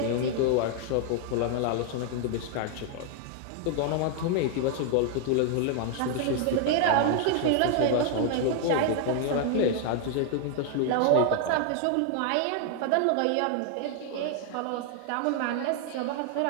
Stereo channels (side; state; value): both; different; correlation 0.00